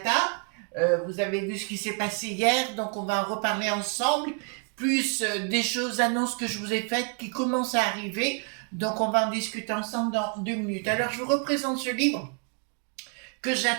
Vous avez vu ce qui s'est passé hier, donc on va en reparler ensemble, plus des choses, annonces que je vous ai faites qui commencent à arriver, donc on va en discuter ensemble dans 2 minutes. Alors je vous représente ce livre que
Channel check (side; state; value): left; quieter; 37.0 dB